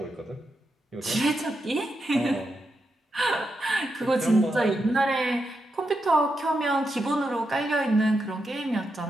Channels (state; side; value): normal; both; correlation 0.85